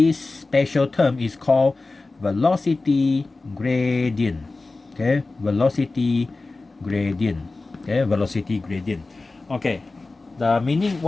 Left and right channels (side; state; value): right; quieter; 3.4 dB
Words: special term is called velocity gradient. Okay, velocity gradient. Okay, velocity gradient. Okay, the meaning,